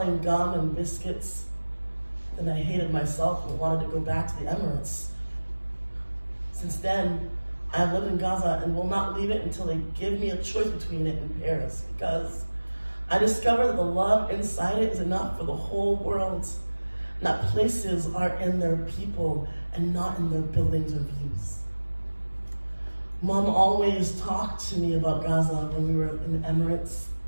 gum and biscuits. Then I hated myself and wanted to go back to the Emirates. Since then, I have lived in Gaza and will not leave it until they give me a choice between it and Paris, because I discovered that the love inside it is enough for the whole world, and that places are in their people and not in their buildings or views. Mom always talked to me about Gaza when we were in the Emirates.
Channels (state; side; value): inverted; both; correlation -1.00